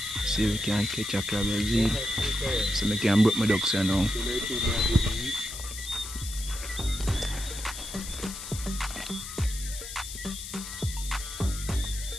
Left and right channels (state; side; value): noise; left; hiss, 9 dB below the sound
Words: See if we can catch a crab as well. So I can break my ducks here now.